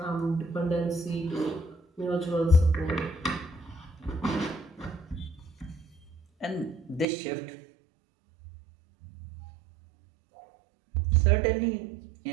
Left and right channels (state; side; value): drops out; left; at 7.1 s